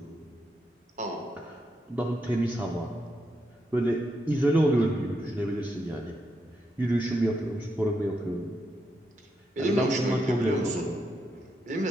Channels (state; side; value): normal; both; correlation 0.82